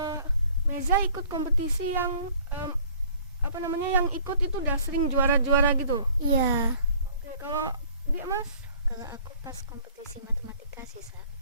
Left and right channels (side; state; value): both; inverted; correlation -0.54